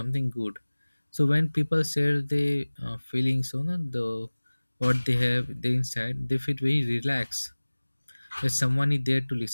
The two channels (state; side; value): inverted; both; correlation -1.00